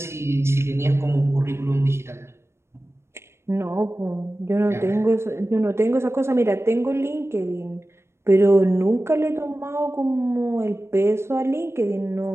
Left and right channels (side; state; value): left; late; 0.13 ms